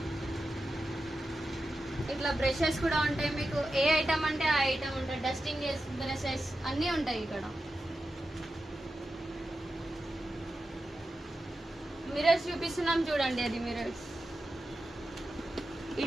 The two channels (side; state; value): both; normal; correlation 0.91